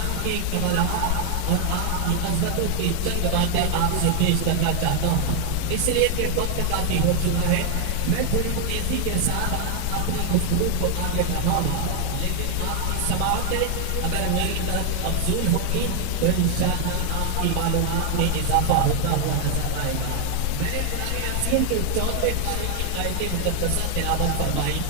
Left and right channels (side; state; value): both; different; correlation 0.00